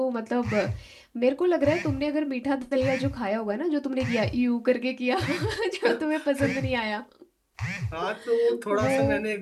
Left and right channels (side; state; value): both; identical; correlation 1.00